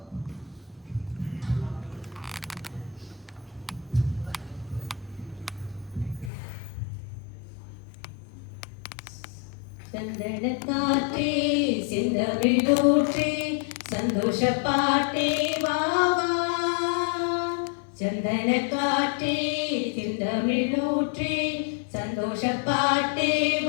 சந்தனக்காற்றே செந்தமிழூற்றே சந்தோஷ பாட்டே வாவா, சந்தனக்காற்றே செந்தமிழூற்றே சந்தோஷ பாட்டே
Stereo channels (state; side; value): drops out; right; at 6.3 s